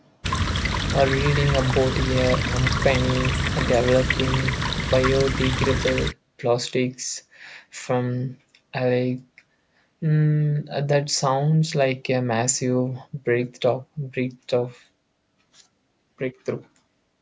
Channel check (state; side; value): identical; both; correlation 1.00